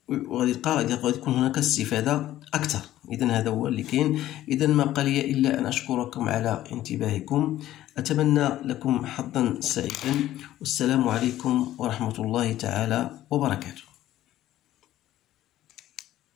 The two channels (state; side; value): quieter; right; 13.8 dB